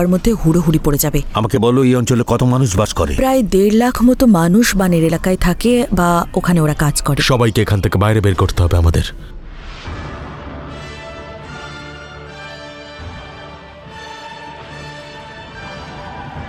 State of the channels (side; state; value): both; identical; correlation 1.00